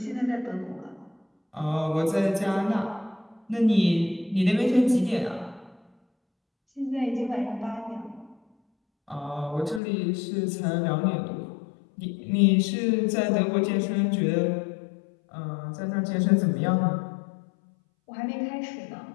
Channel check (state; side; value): drops out; right; at 9.8 s